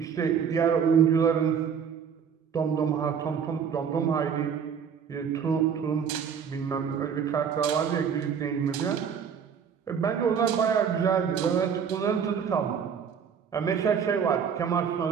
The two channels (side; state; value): left; quieter; 7.2 dB